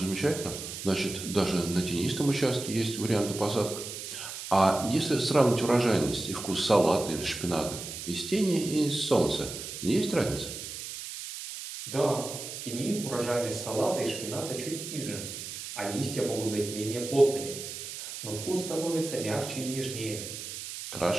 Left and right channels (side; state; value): right; noise; hiss, 8 dB below the sound